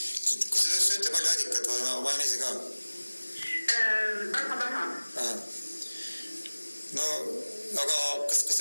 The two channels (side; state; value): both; inverted; correlation -1.00